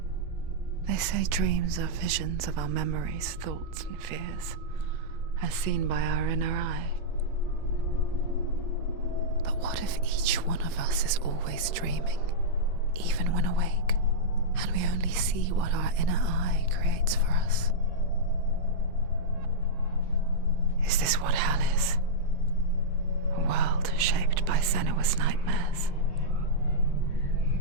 They say dreams are visions of our memories, thoughts, and fears, as seen by our inner eye. But what if each one of us is always dreaming, even when awake, and we only see what our inner eye creates for us? Is this what hell is? A world shaped by Senua's nightmares.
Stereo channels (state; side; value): late; left; 7.7 ms